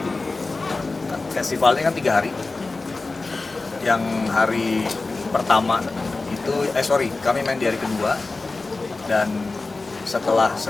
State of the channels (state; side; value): quieter; right; 3.5 dB